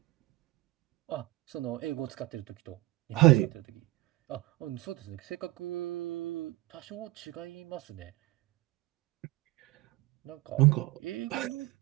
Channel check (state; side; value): quieter; left; 19.4 dB